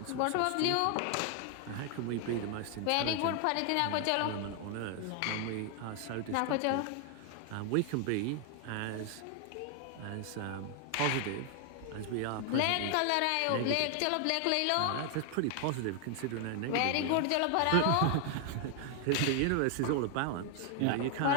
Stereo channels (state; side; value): different; both; correlation 0.00